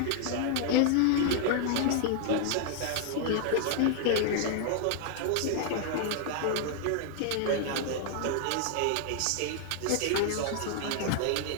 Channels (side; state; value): both; different; correlation 0.00